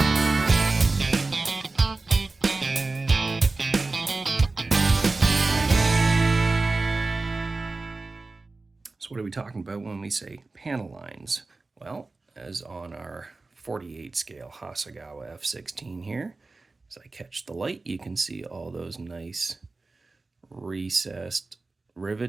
So what are we talking about when we say panel lines? Well, as on our 48 scale Hasegawa F16 here, as I catch the light, you can see all those nice recessed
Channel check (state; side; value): quieter; left; 3.5 dB